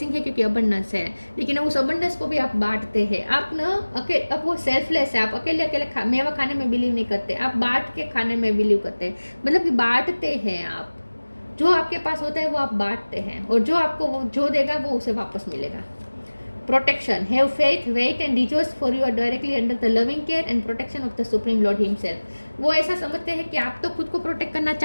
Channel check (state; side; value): inverted; both; correlation -1.00